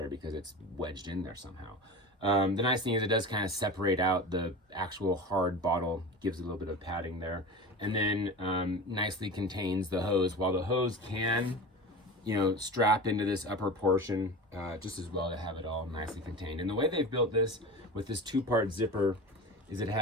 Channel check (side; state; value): both; normal; correlation 0.31